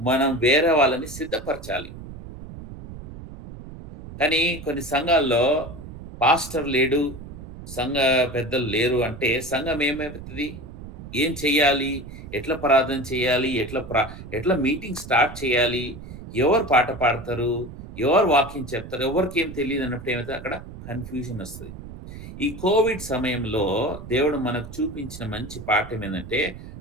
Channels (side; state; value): right; noise; rumble, 13 dB below the sound